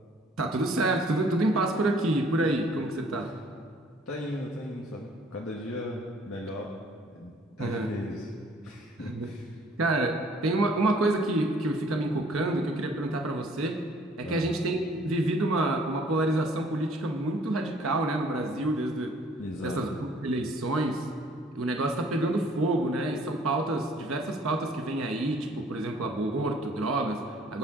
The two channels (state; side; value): normal; both; correlation 0.58